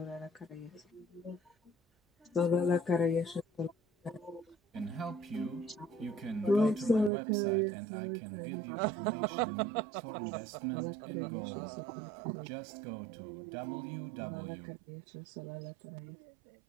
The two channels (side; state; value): left; drops out; at 7.1 s